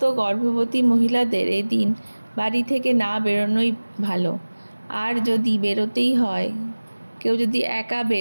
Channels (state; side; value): inverted; both; correlation -1.00